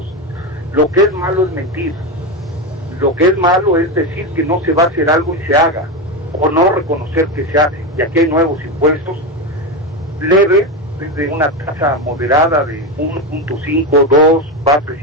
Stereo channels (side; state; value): both; normal; correlation 0.15